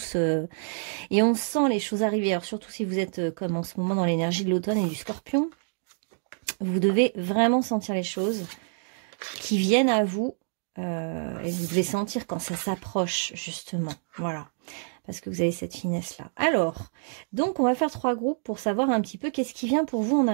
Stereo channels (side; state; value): left; silent; digital silence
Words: et on sent les choses arriver. Alors surtout si vous êtes comme en ce moment dans l'énergie de l'automne et du scorpion, vous devez vraiment sentir les choses qui viennent à vous et vous devez sentir quand ça s'approche justement. Voilà. Parce que vous avez cette finesse-là. Alors, donc on va faire 3 groupes pour savoir un petit peu qu'est-ce qui vient pour vous en